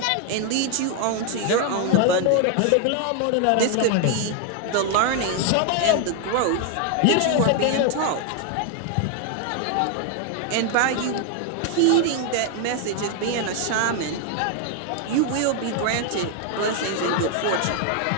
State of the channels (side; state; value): both; different; correlation 0.01